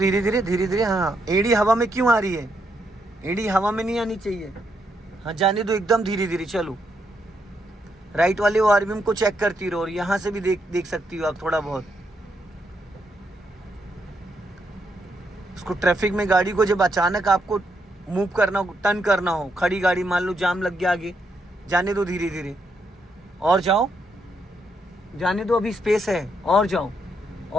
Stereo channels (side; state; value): both; normal; correlation 0.78